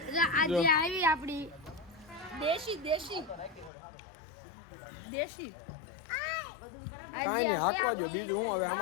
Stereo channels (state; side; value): drops out; right; at 3.7 s